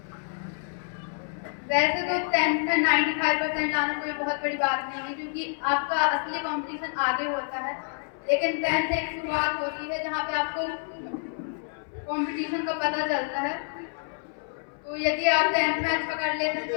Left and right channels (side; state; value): right; silent; 58 dB below the other